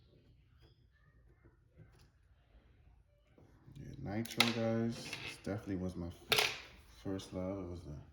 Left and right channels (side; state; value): both; identical; correlation 1.00